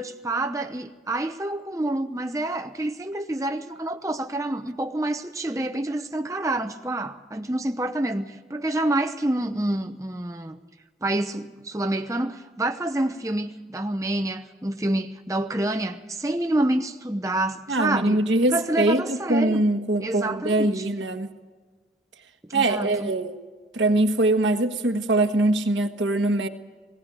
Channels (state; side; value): normal; both; correlation 0.58